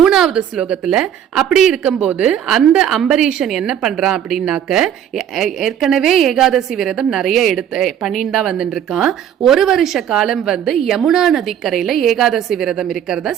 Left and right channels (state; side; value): quieter; left; 9.7 dB